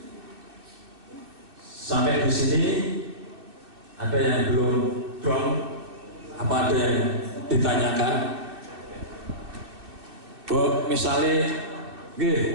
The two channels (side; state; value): left; late; 2.6 ms